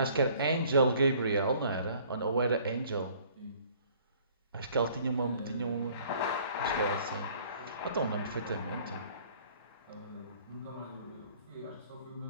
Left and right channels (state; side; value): inverted; both; correlation -0.55